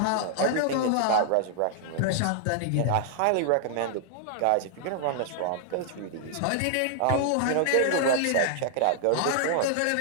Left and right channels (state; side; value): different; both; correlation -0.01